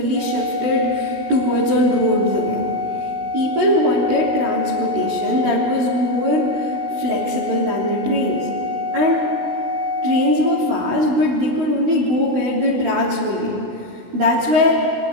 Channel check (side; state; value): left; late; 16 ms